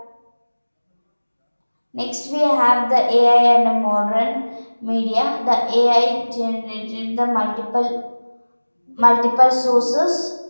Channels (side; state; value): both; inverted; correlation -1.00